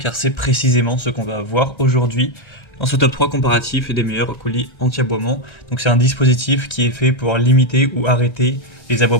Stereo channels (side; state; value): right; late; 1.4 ms